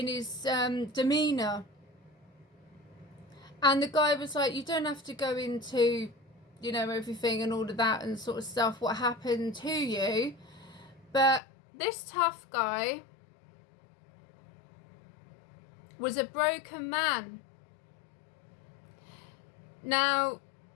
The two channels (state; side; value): drops out; right; at 11.4 s